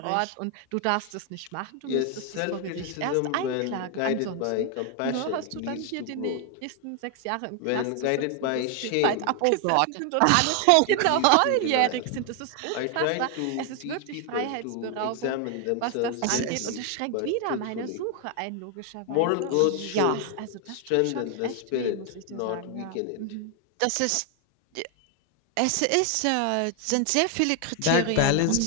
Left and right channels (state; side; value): different; both; correlation 0.00